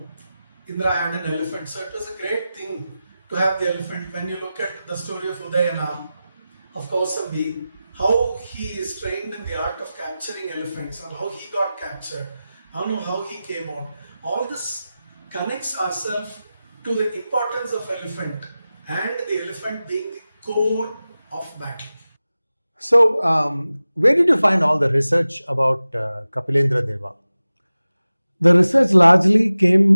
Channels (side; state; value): both; inverted; correlation -0.95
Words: Indra had an elephant, so it was a great thing to have the elephant. When you look at the story of Udayana, of Kausambi, how he is trained in the art of capturing elephants and how he got captured, how he came out. All this connects ourselves to the importance of elephant and the elephant being the core of battle. So, where did you find all the research about Kapilendra Deva? The research largely